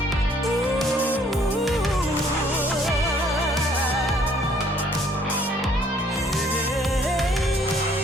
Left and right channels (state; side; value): normal; both; correlation 0.62